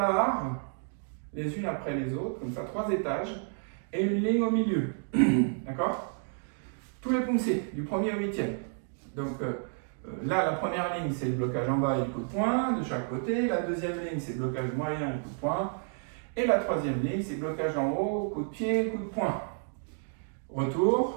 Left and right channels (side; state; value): left; silent; 57 dB below the other